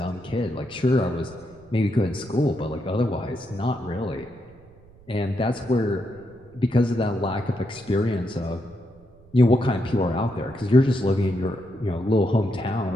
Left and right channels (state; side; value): noise; right; rumble, 26 dB below the sound